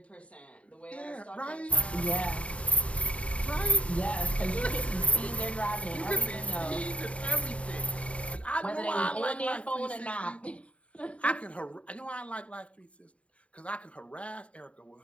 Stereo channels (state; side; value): late; right; 0.063 ms